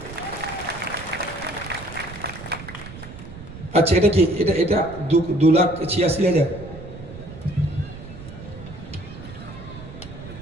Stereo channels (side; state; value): right; noise; rumble, 14 dB below the sound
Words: আচ্ছা, এটা কি? এটা 2,86,000।